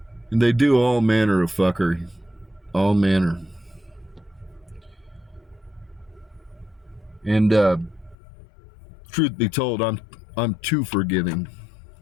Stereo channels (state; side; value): drops out; right; at 8.2 s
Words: And they do all manner of fuckery. All manner. And truth be told, I'm too forgiving.